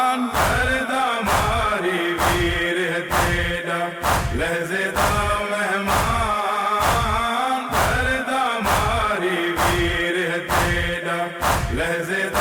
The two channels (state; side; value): identical; both; correlation 1.00